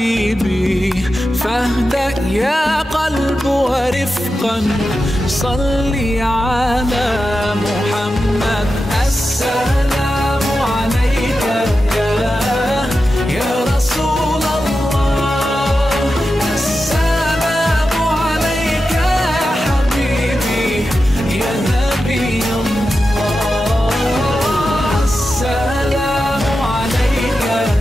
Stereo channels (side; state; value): both; normal; correlation 0.91